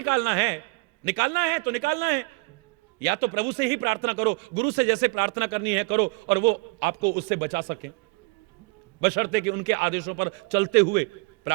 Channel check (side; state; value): left; quieter; 27.9 dB